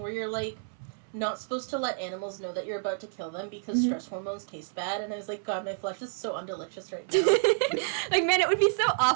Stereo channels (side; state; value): left; silent; 58 dB below the other